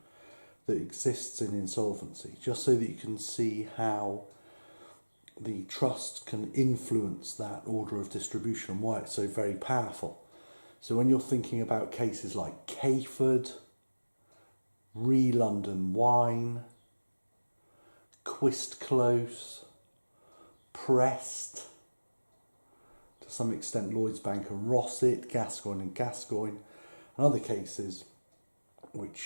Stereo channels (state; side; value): inverted; both; correlation -1.00